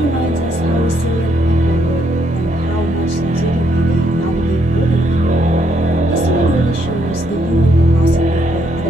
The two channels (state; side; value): normal; both; correlation 0.73